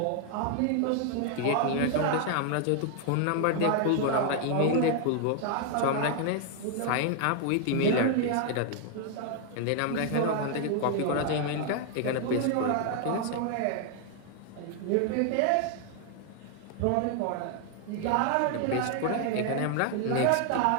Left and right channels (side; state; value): both; different; correlation 0.00